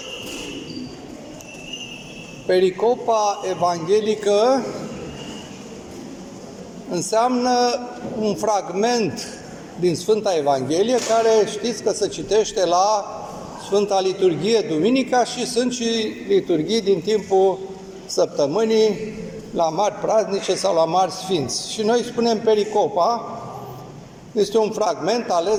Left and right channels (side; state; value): both; identical; correlation 1.00